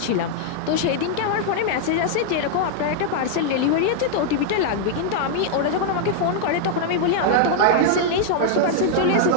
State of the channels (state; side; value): different; both; correlation -0.01